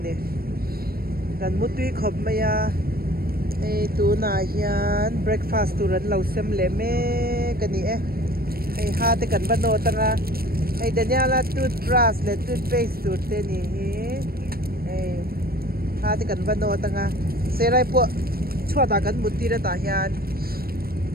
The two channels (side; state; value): left; late; 0.44 ms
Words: gần một tuy khop mày hay tu na hiền breakfast tu rắn lẩu xem lệ mê cái ni hay ha te cần ban nô tanga hay Daniela toothbrush le toothpaste tu te ni hay ha te cần ban nô tanga serai po chua ta kan muti ra ta hian